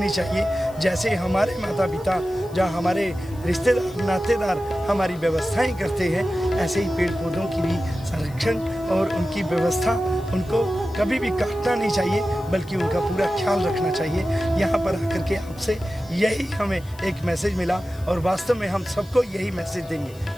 चाहिए। जैसे हमारे माता पिता, जहाँ हमारे रिश्तेदार, नातेदार हमारी व्यवस्थाएं करते हैं, ऐसे ही पेड़ पौधों की भी संरक्षण और उनकी व्यवस्था, उनको कभी भी काटना नहीं चाहिए बल्कि उनका पूरा ख्याल रखना चाहिए। यहाँ पर आकर के आपसे यही हमें एक मैसेज मिला और वास्तव में हम सबको यही मैसेज देंगे।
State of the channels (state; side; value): noise; left; hiss, 24 dB below the sound